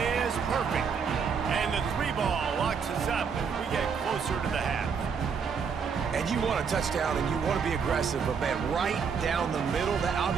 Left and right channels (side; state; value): left; quieter; 6.2 dB